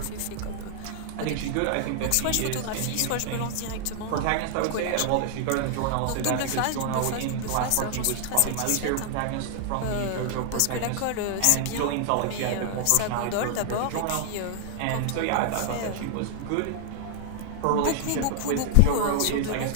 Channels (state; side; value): different; both; correlation 0.00